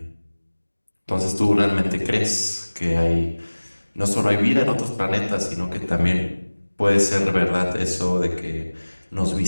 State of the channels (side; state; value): both; inverted; correlation -1.00